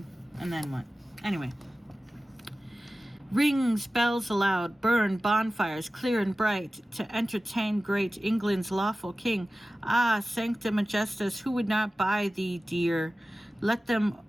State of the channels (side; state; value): both; normal; correlation 0.96